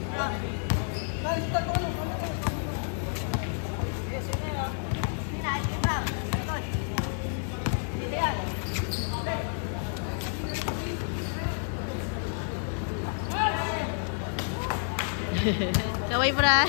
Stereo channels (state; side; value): silent; right; 58 dB below the other